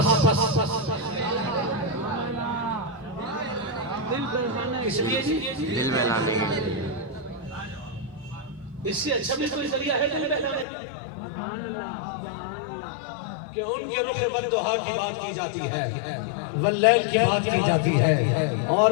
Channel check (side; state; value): right; drops out; at 10.7 s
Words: اس لیے دل بہلانے کے لیے اس سے اچھا بھی کوئی ذریعہ ہے دل بہلانے کا کہ ان کے رخ والدہا کی بات کی جاتی ہے واللیل کی بات کی جاتی ہے اور